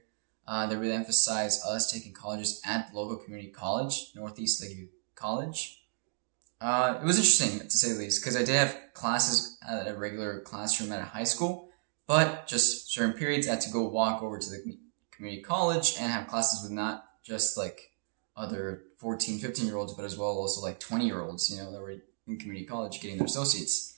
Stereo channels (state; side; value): silent; left; digital silence